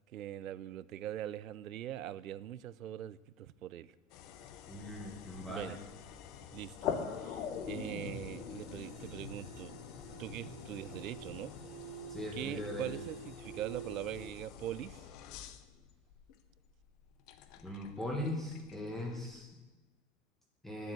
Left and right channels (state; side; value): normal; both; correlation 0.33